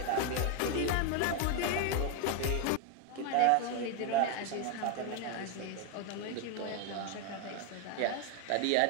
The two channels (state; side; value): different; both; correlation 0.02